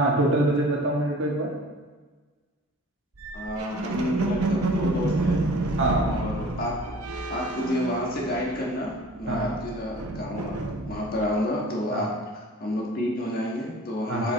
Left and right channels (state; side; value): normal; both; correlation 0.45